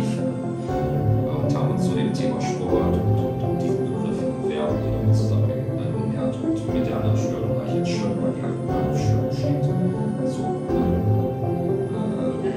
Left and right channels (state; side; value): identical; both; correlation 1.00